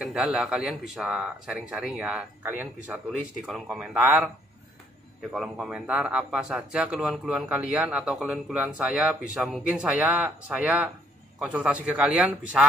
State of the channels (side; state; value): both; normal; correlation 0.66